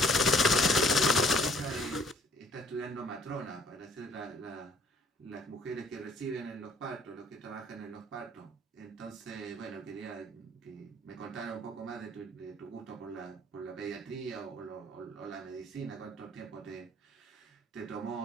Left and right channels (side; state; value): both; normal; correlation 0.58